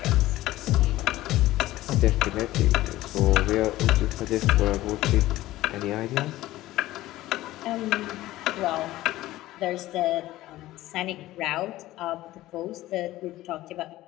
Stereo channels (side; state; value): right; quieter; 16.2 dB